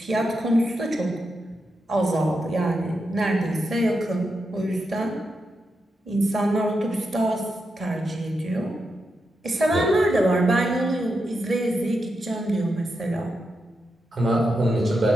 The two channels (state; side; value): normal; both; correlation 0.86